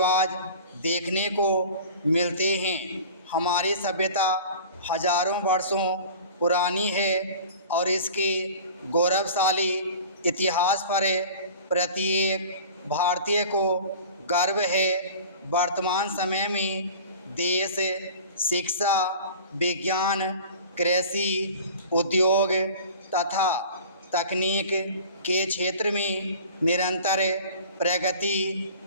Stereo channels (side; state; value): both; inverted; correlation -0.41